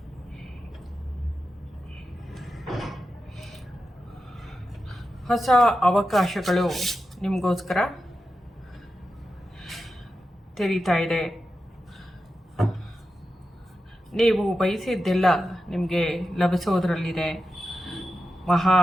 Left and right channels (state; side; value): normal; both; correlation 0.90